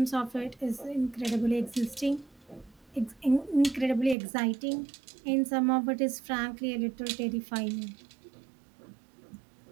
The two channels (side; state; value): left; drops out; at 4.2 s